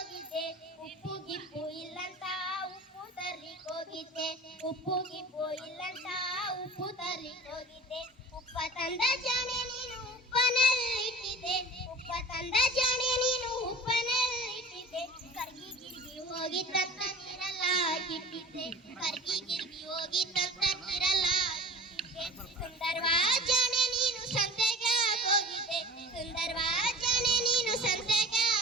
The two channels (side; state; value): both; normal; correlation 0.41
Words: ಉಪ್ಪು ಗಿಪ್ಪು ಇಲ್ಲಂತ ಉಪ್ಪು ತರ್ಲಿಕ್ಕೆ ಹೋಗಿದ್ದೆ, ಉಪ್ಪು ಗಿಪ್ಪು ಇಲ್ಲಂತ ಉಪ್ಪು ತರ್ಲಿಕ್ಕೆ ಹೋಗಿದ್ದೆ. ಉಪ್ಪ ತಂದ ಜಾಣೆ ನೀನು ಉಪ್ಪನಲ್ಲಿಟ್ಟಿದ್ದೆ, ಉಪ್ಪ ತಂದ ಜಾಣೆ ನೀನು ಉಪ್ಪನಲ್ಲಿಟ್ಟಿದ್ದೆ. ಕರ್ಗಿ ಗಿರ್ಗಿ ಹೋಗಿತ್ತಂತ ನೀರೆಲ್ಲ ಕಿಟ್ಟಿದ್ದೆ, ಕರ್ಗಿ ಗಿರ್ಗಿ ಹೋಗಿತ್ತಂತ ನೀರೆಲ್ಲ ಕಿಟ್ಟಿದ್ದೆ. ಸುಂದರವಾ ಜಾಣೆ ನೀನು ಸಂತೆಗೆ ಹೋಗಿದ್ದೆ, ಸುಂದರವಾ ಜಾಣೆ ನೀನು ಸಂತೆಗೆ